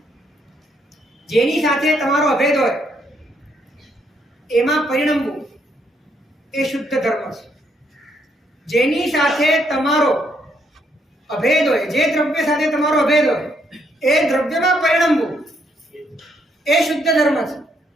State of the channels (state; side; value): normal; both; correlation 0.73